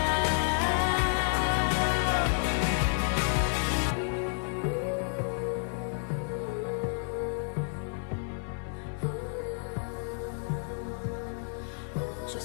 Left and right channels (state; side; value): silent; right; 58 dB below the other